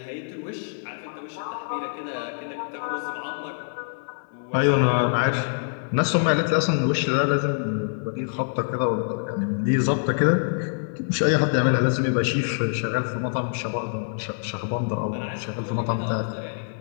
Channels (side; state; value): right; silent; digital silence